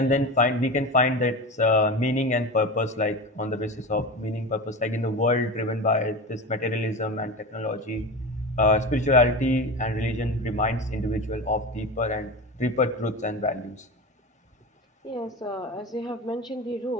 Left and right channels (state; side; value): normal; both; correlation 0.26